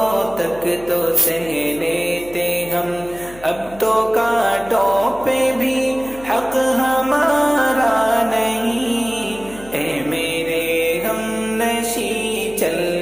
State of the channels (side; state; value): left; noise; hum, 20 dB below the sound